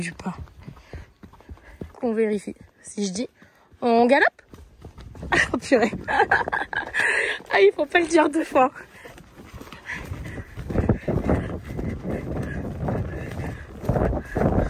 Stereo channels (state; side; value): identical; both; correlation 1.00